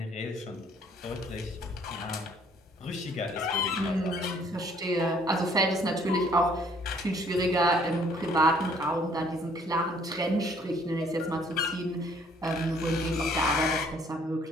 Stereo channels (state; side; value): normal; both; correlation 0.60